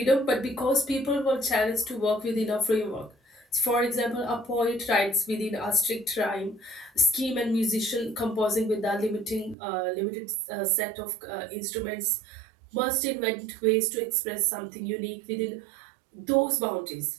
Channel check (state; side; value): drops out; left; at 9.6 s